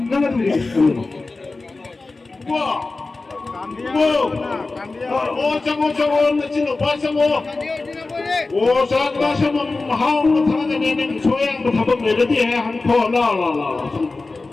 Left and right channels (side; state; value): right; quieter; 3.5 dB